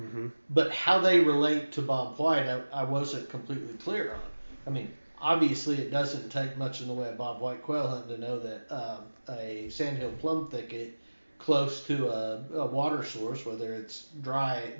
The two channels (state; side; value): inverted; both; correlation -1.00